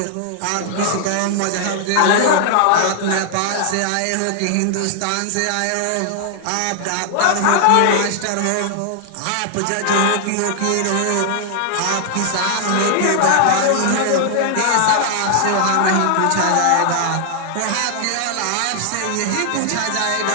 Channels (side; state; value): both; different; correlation 0.00